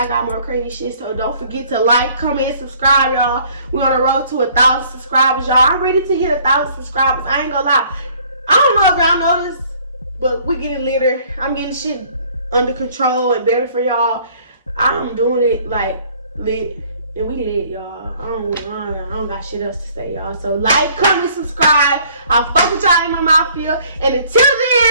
got more crazy shit. So don't forget to like, comment, and subscribe, y'all. We're on the road to 1,000 subscribers, y'all. I'm ready to hit 1,000 subscribers. I ain't gonna lie. I don't know if y'all noticed, but we getting litter. I'm getting shit under control and better for y'all. I'm doing it like lit. And we lit, y'all. I don't got shit else to say, y'all. So like, comment, subscribe. I'll fuck with y'all in MM.Mafia. And until then,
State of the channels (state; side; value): inverted; both; correlation -0.58